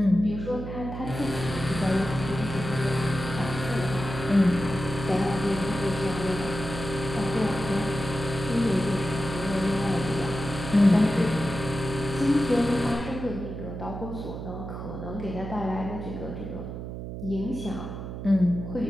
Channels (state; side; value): noise; right; hum, 7 dB below the sound